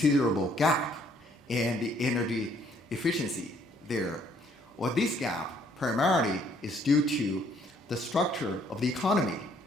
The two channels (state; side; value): normal; both; correlation 0.65